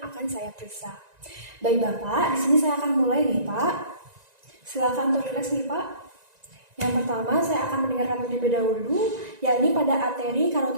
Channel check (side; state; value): left; late; 1.9 ms